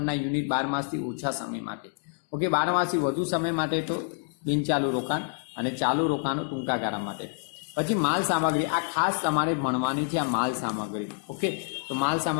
યુનિટ 12 માસથી ઓછા સમય માટે. ઓકે, 12 માસથી વધુ સમય માટે તો બિનચાલુ રોકાણ, અને ચાલુ રોકાણો ટૂંકા ગાળા માટે. પછી માલ સામગ્રી, આ ખાસ તમારે ભણવાની છે, આ માલ સામગ્રી. ઓકે, તો માલ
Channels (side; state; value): right; silent; 60 dB below the other